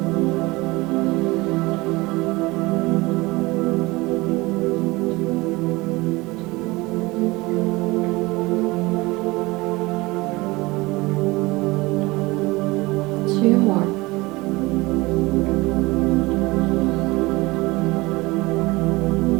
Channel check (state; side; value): quieter; left; 22.3 dB